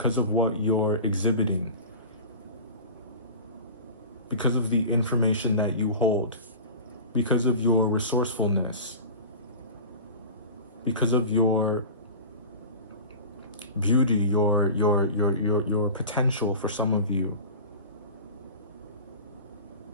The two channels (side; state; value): both; inverted; correlation -0.34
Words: of what you're exhibiting, because of the information that you hold, because of your resourcefulness, because of your beauty, your potential for some of you.